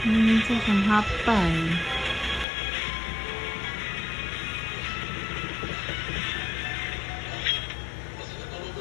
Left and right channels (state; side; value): drops out; right; at 2.5 s